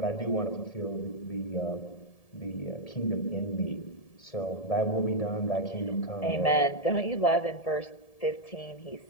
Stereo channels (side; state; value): right; late; 1.7 ms